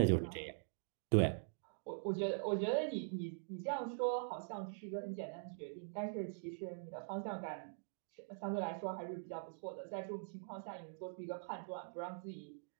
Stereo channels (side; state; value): left; silent; digital silence